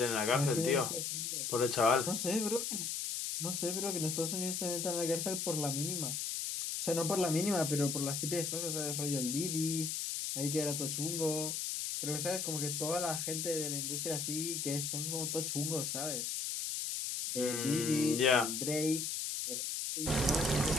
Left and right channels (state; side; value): noise; left; hiss, 2 dB below the sound